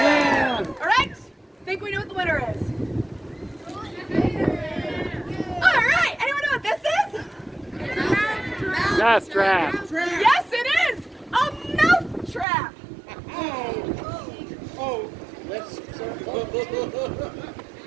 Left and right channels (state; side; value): drops out; left; at 12.5 s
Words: All right. Think we know what the winner is. All right. Anyone know what this is? That's trap. Yes, it is. A mouth trap. Oh, let's.